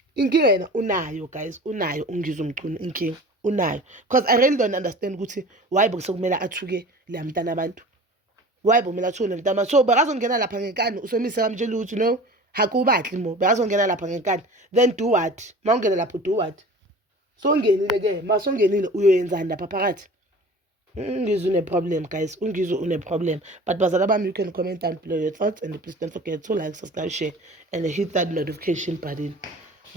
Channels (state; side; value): normal; both; correlation 0.41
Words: Inkinga yena unayo guys, unayo Ungizwe Mchunu inkinga unayo. Because I really don't understand ukuthi why bekumele athuke le mntana abantu. Why bekumele athuke le mntana. So bekazongena lapha ngenkani uSomizi akamtshela ukuthi no, hakubahle mo. Bekazongena lapha ngenkani. Then do what? Mawungena lapho do what? So ungenile ke, masongenile uyoyenzani lapha phakathi? Ungizwe une problem guys, Ungizwe une problem. But bazala bami, you can comment down below your thoughts and please don't forget to like, subscribe, share and hit that notification button.